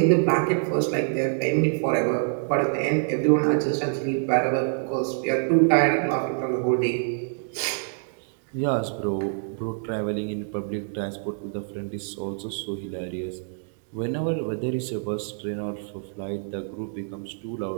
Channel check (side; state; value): left; silent; digital silence